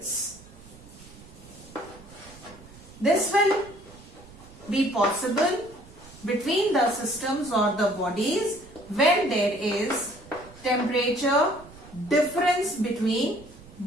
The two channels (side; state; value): right; noise; rumble, 21 dB below the sound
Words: This will be possible between the systems or the bodies when there is temperature difference between